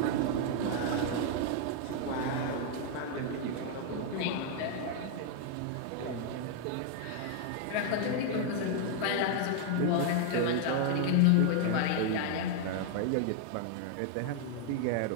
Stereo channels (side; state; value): both; different; correlation 0.00